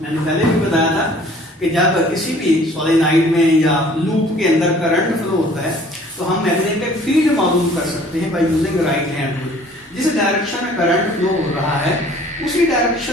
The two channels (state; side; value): normal; both; correlation 0.53